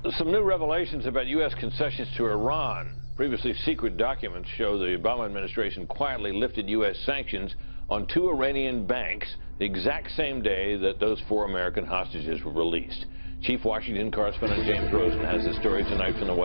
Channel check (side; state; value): both; inverted; correlation -1.00